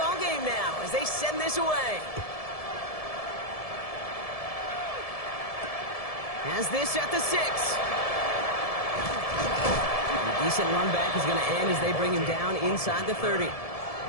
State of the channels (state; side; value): late; right; 1.7 ms